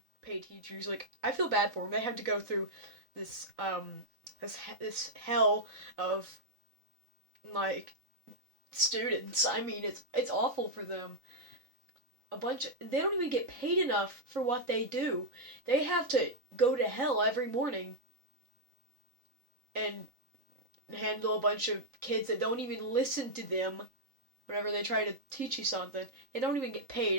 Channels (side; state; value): left; late; 3.8 ms